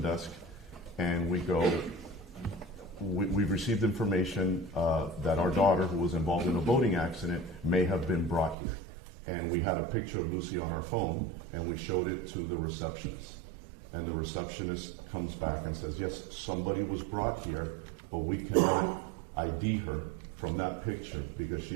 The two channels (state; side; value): drops out; left; at 8.6 s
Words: and we go, we've received information that our daughter, who was involved in a boating accident, may have been brought here. And we had a picture of Lucy on our phone, and we showed it to the receptionist. And the receptionist comes back and says, yes, somebody was brought here, but we cannot ID her from that picture because